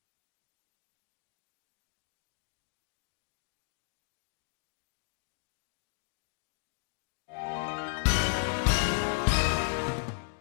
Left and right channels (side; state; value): right; silent; digital silence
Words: Par conséquent, ils n'atteindront jamais le détecteur. Ainsi, la police focale a encore frappé et les malfaiteurs ont été incarcérés.